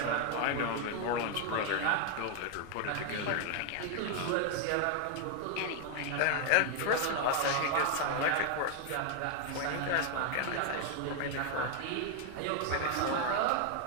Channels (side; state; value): both; different; correlation 0.01